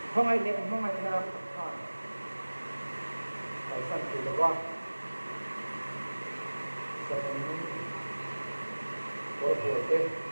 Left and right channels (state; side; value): inverted; both; correlation -1.00